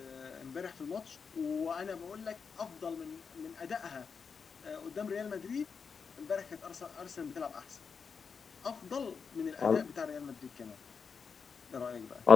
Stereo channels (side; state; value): right; quieter; 5.8 dB